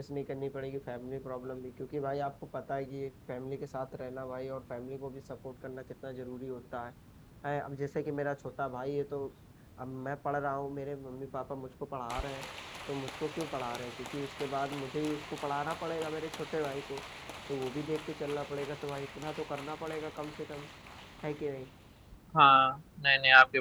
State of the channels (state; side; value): identical; both; correlation 1.00